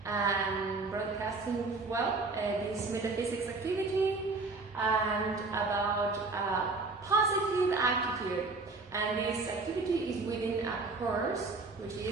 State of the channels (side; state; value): left; quieter; 3.7 dB